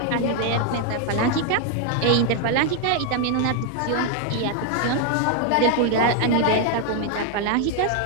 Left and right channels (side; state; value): both; different; correlation 0.00